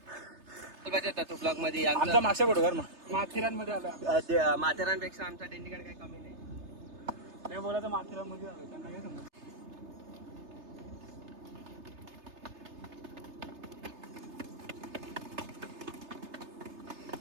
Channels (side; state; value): left; late; 3.3 ms